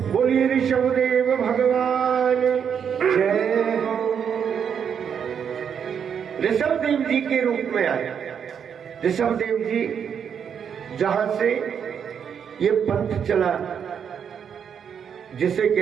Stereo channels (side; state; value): left; quieter; 7.6 dB